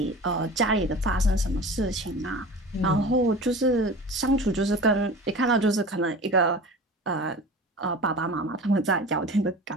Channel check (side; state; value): both; normal; correlation 0.36